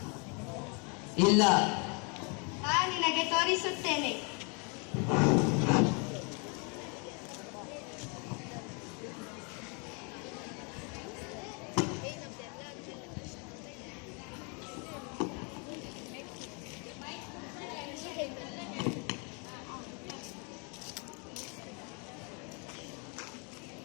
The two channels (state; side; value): quieter; right; 34.9 dB